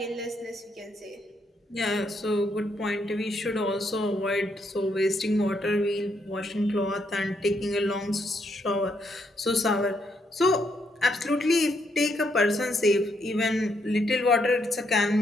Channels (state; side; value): normal; both; correlation 0.75